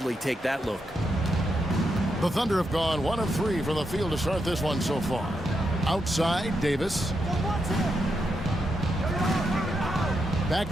take that look. The Thunder have gone 1 of 3 from the field to start this one so far. Outside, Davis. Back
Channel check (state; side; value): normal; both; correlation 0.83